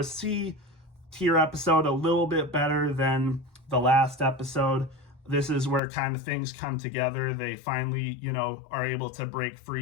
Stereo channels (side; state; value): right; drops out; at 5.8 s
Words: C tier episode, a little bit better than the last episode. This is where kind of things come together. They finally, are able to break